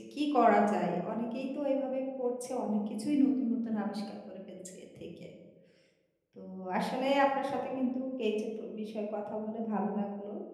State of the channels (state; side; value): identical; both; correlation 1.00